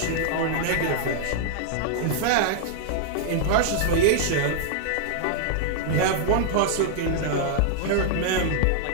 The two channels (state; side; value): different; both; correlation -0.01